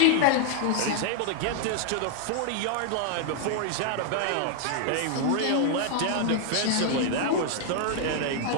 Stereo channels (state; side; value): different; both; correlation 0.00